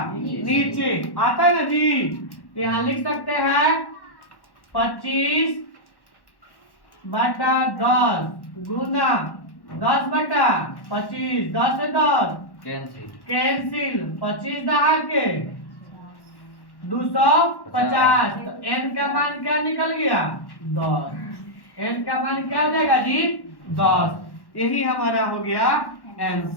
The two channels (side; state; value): right; late; 1.1 ms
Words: नीचे आता है ना जी। तो यहाँ लिख सकते हैं 25/10 गुना 10/25, 10 से 10 कैंसिल, 25 दहा के 250। तो n का मान क्या निकल गया 10, n का मान क्या हो जाएगा जी 10। यही हमारा हो गया